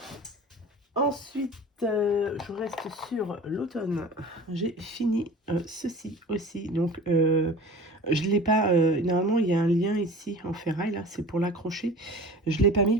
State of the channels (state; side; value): normal; both; correlation 0.40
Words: Ensuite, je reste sur l'automne. J'ai fini ceci aussi. Donc, je ne l'ai pas... normalement, il y a un lien ici en ferraille, là, c'est pour l'accrocher. Je ne l'ai pas